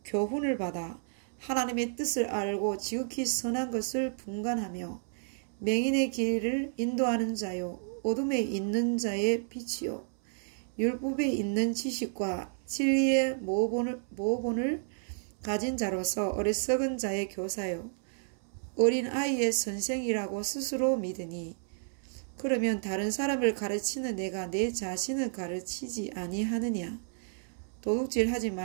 교훈을 받아 하나님의 뜻을 알고 지극히 선한 것을 분간하며 맹인의 길을 인도하는 자요 어둠에 있는 자의 빛이요 율법에 있는 지식과 진리의 모본을 가진 자로서 어리석은 자의 교사요 어린 아이의 선생이라고 스스로 믿으니 그러면 다른 사람을 가르치는 내가 내 자신을 가르치지 아니하느냐? 도둑질하지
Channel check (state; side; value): silent; left; 57 dB below the other